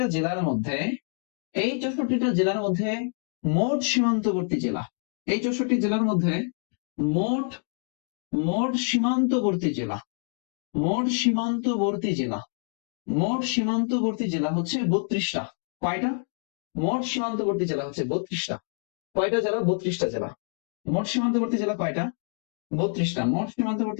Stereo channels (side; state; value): right; silent; 56 dB below the other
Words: জেলার মধ্যে, এই 64টা জেলার মধ্যে মোট সীমান্তবর্তী জেলা, এই 64 জেলার মধ্যে মোট, মোট সীমান্তবর্তী জেলা, মোট সীমান্তবর্তী জেলা, মোট সীমান্তবর্তী জেলা হচ্ছে 32টা। কয়টা? মোট সীমান্তবর্তী জেলা হচ্ছে 32টা। কয়টা জেলা? 32টা জেলা। মোট সীমান্তবর্তী জেলা কয়টা? 32টা। মোট